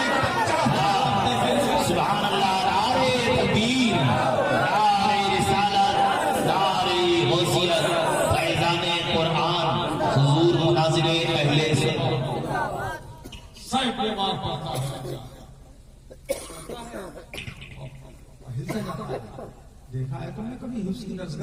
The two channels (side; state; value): both; identical; correlation 1.00